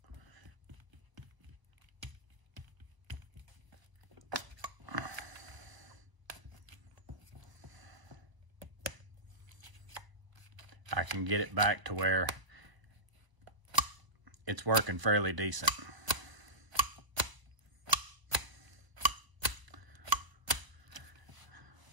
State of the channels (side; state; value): left; late; 1.0 ms